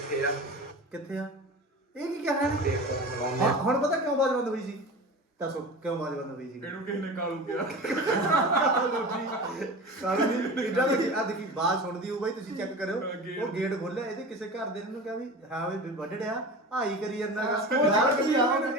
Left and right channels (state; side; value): normal; both; correlation 0.32